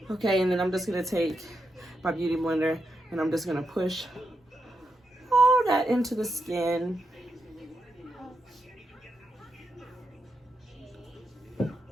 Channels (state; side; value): normal; both; correlation 0.85